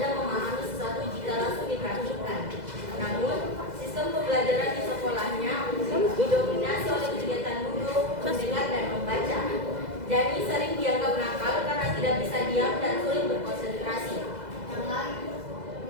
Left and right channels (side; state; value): left; late; 2.0 ms